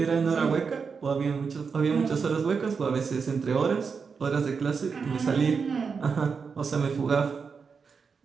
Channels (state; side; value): quieter; left; 5.5 dB